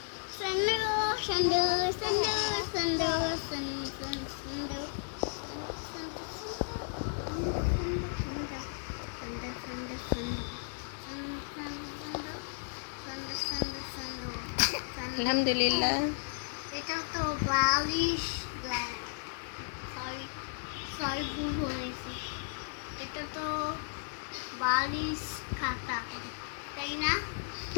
সন্দু, সন্দু, সন্দু, সন্দু, সন্দু, সন্দু, আলহামদুলিল্লাহ। এটা তো বালিশ, সরি সরি ভুল বলেছি। এটা তো বালিশ খাতা, তাই না?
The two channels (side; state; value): right; silent; 55 dB below the other